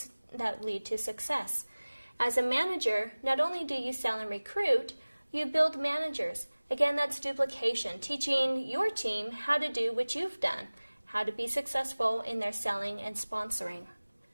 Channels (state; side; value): inverted; both; correlation -1.00